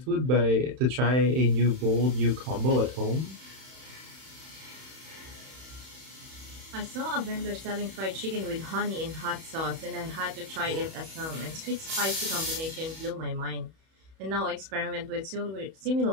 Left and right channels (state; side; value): late; left; 31 ms